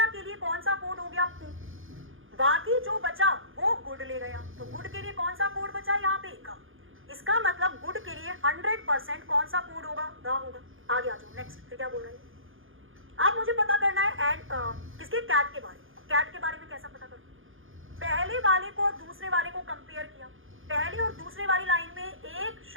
के लिए कौन सा कोड हो गया, पू। बाकी जो बचा वो गुड ले गया, तो गुड के लिए कौन सा कोड बचा यहाँ पे, का। इसका मतलब गुड के लिए 100% कौन सा कोड होगा, गा होगा। आगे आ जाओ, नेक्स्ट। फिर क्या बोल रहे हैं, अब मुझे पता करना है एंड किसके, कैट के बारे में। कैट के बारे में कैसा पता करूं, पहले वाले को और दूसरे वाले को कंपेयर किया, पहली और दूसरे वाली लाइन में एक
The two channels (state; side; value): late; left; 0.59 ms